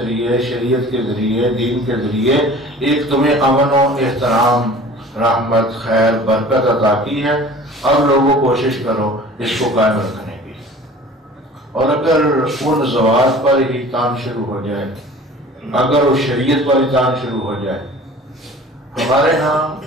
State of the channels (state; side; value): normal; both; correlation 0.44